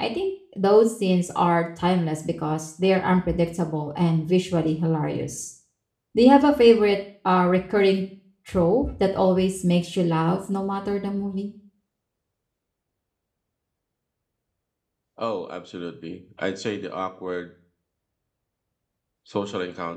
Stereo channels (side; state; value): both; identical; correlation 1.00